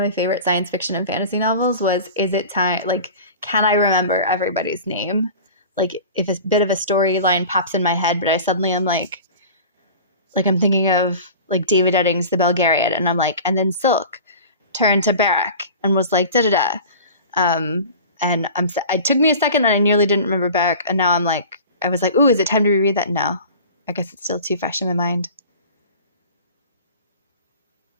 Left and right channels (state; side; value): inverted; both; correlation -0.38